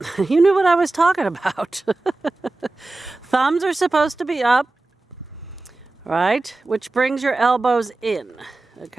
You knew what I was talking about. Thumbs are supposed to be up, right? Which brings your elbows in,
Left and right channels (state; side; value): quieter; left; 3.1 dB